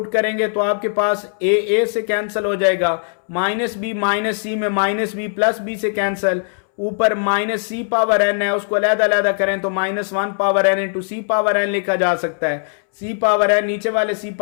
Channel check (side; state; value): right; silent; 66 dB below the other